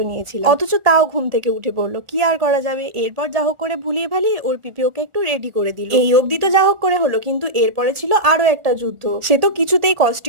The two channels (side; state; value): left; late; 1.4 ms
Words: নিয়েছিলাম। অথচ তাও ঘুম থেকে উঠে পড়লো, কি আর করা যাবে। এরপর যা হোক করে ভুলিয়ে ভালিয়ে ওর পিপি ওকে একটু রেডি করে দিল। এই অবধি তো যা হোক করে হলো, কিন্তু এরপরে ছিল আরো একটা যুদ্ধ। সে তো কিছুতেই